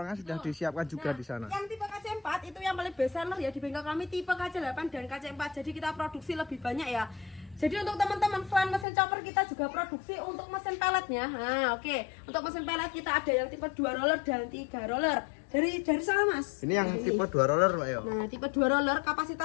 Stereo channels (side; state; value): right; drops out; at 8.8 s